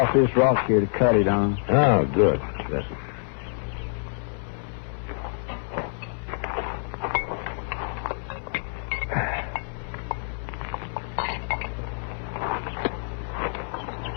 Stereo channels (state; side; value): silent; right; digital silence